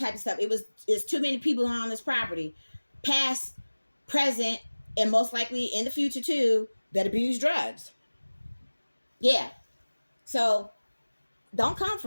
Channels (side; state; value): both; inverted; correlation -1.00